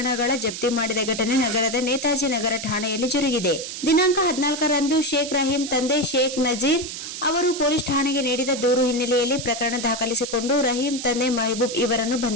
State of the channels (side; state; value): right; noise; hiss, 8 dB below the sound